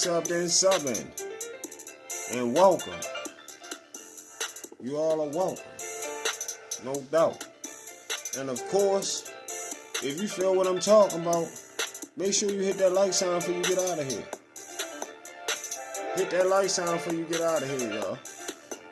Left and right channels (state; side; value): identical; both; correlation 1.00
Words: in, sub in. And welcome. You all are welcome. No doubt. And of course, if you feel what I'm talking about, make sure you hit that like sign before you get out of here. Hit that like sign before you get out of here, y'all.